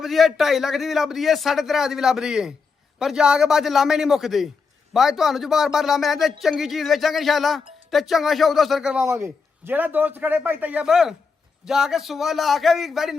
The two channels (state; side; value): quieter; right; 5.0 dB